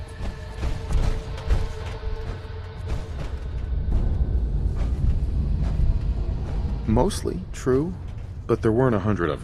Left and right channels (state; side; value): identical; both; correlation 1.00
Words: Mostly true, but there weren't 100 of